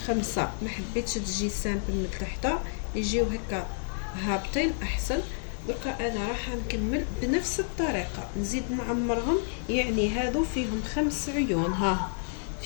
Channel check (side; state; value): right; silent; digital silence